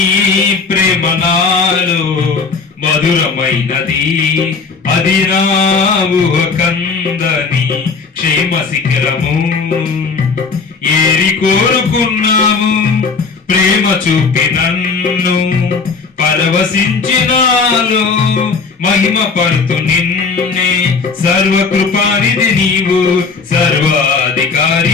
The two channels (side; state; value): right; quieter; 4.8 dB